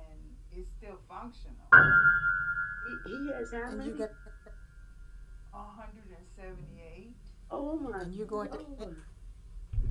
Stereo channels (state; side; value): identical; both; correlation 1.00